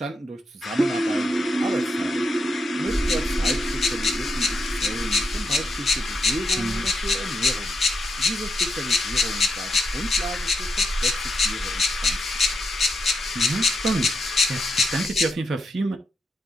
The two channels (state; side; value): normal; both; correlation 0.82